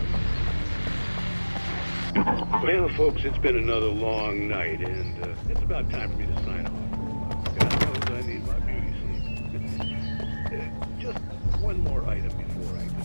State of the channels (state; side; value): inverted; both; correlation -1.00